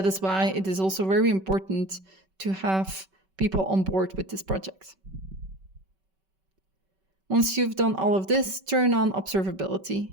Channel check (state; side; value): late; left; 5.2 ms